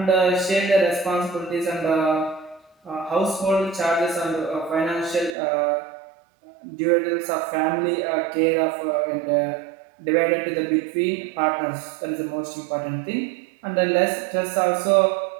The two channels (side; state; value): left; drops out; at 5.4 s